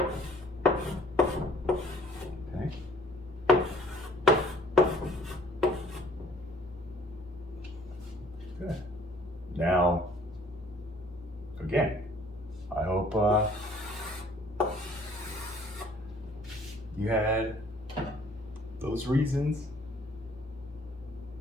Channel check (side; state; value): both; normal; correlation 0.57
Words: Okay. Good. Now, again, I hope you had those reasons